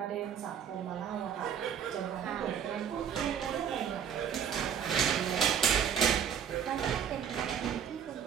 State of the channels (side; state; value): left; quieter; 8.4 dB